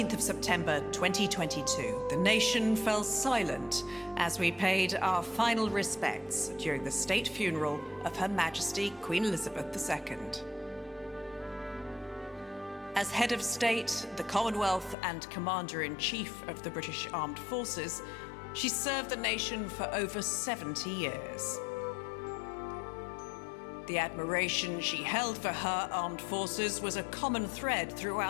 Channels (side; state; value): right; drops out; at 15.0 s